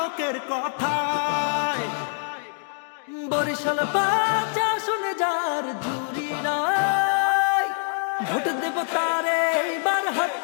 কথায়। বরিশাল বাচ্চা শুনে যার জুড়ি নাই, ভোট দেব তারে এইবার হাত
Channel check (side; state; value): right; silent; digital silence